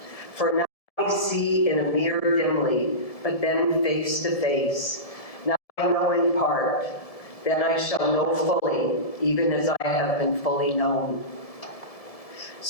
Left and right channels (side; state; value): right; late; 1.7 ms